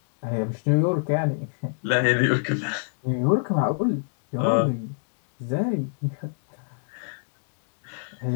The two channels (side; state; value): right; silent; digital silence